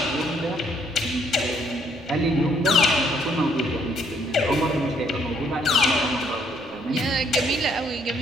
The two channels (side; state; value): right; noise; rumble, 27 dB below the sound